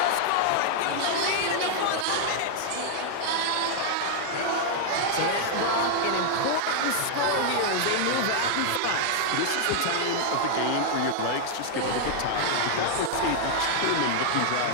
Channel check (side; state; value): both; different; correlation -0.01